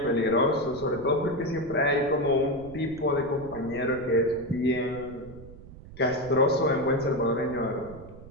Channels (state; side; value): noise; right; rumble, 17 dB below the sound